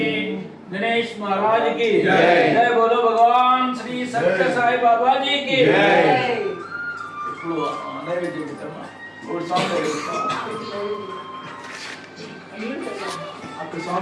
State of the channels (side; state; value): both; identical; correlation 1.00